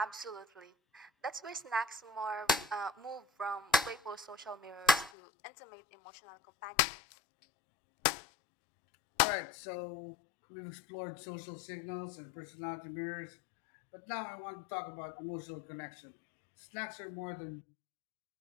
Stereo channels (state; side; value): drops out; right; at 5.1 s